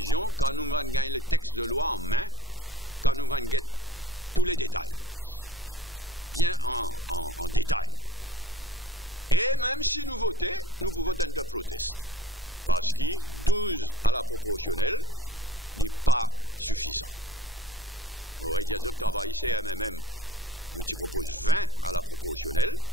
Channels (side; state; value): both; normal; correlation 0.43